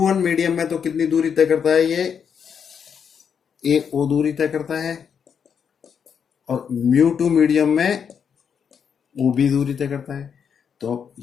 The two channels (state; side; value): quieter; right; 7.2 dB